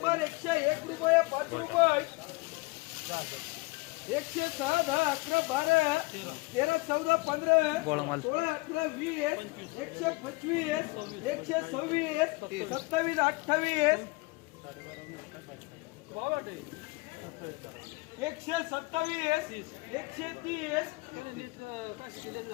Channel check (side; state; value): right; quieter; 25.0 dB